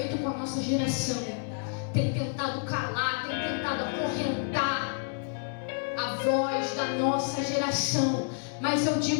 com a nossa geração. Tem tentado calar, tem tentado acorrentar a voz da nossa geração. Mas eu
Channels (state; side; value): silent; right; 58 dB below the other